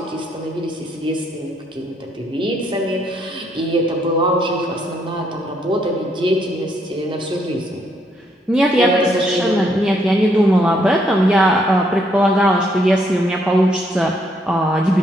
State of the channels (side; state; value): both; normal; correlation 0.72